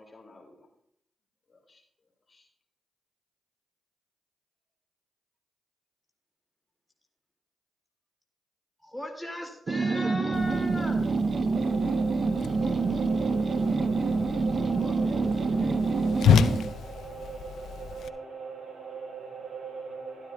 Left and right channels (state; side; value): normal; both; correlation 0.80